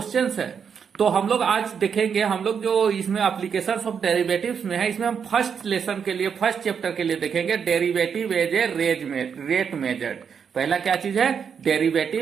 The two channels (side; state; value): left; quieter; 6.9 dB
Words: है तो हम लोग आज देखेंगे। हम लोग जो इसमें एप्लीकेशंस ऑफ डेरिवेटिव्स में है इसमें हम फर्स्ट लेसन के लिए फर्स्ट चैप्टर के लिए देखेंगे derivative as a rate measured. पहला क्या चीज है?